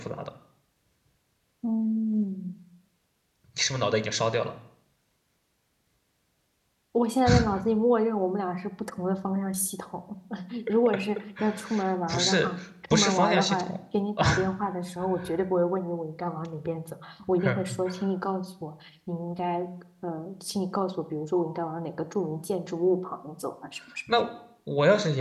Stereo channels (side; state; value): both; identical; correlation 1.00